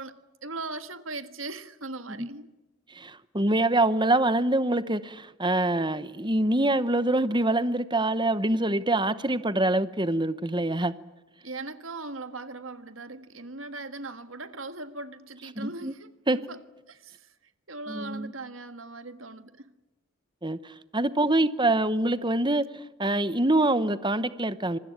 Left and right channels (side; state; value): both; normal; correlation 0.56